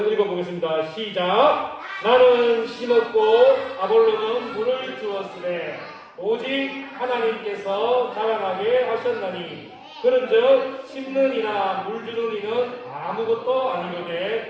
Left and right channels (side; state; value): both; identical; correlation 1.00